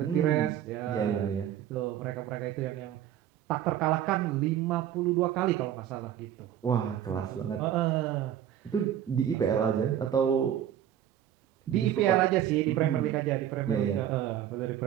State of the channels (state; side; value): quieter; left; 10.7 dB